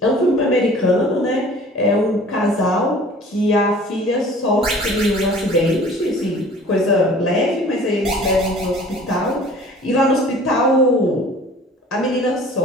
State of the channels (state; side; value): normal; both; correlation 0.47